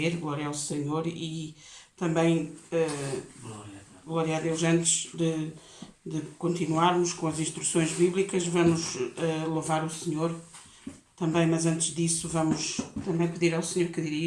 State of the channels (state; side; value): identical; both; correlation 1.00